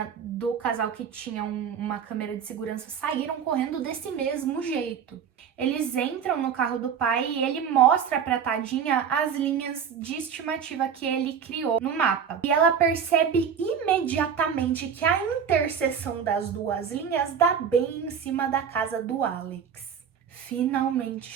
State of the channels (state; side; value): quieter; left; 7.4 dB